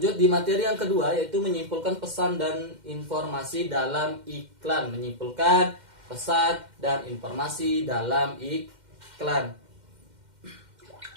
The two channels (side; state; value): left; late; 2.1 ms